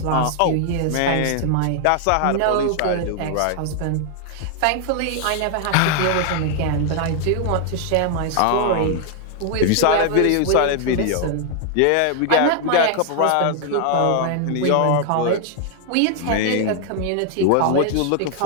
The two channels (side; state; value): both; different; correlation 0.00